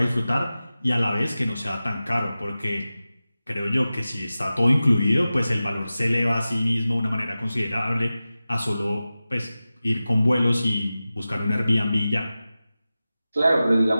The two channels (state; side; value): inverted; both; correlation -0.95